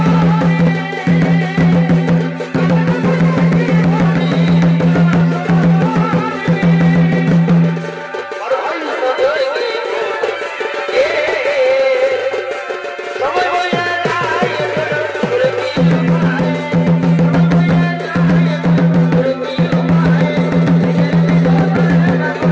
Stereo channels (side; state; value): both; identical; correlation 1.00